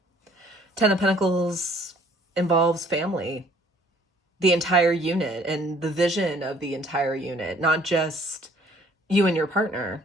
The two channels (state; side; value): normal; both; correlation 0.58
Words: Ten of Pentacles involves family, the entire unit, and the vision of the entire unit, not just you and your partner.